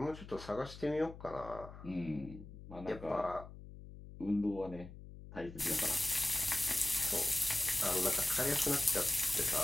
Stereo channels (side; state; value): left; noise; hum, 15 dB below the sound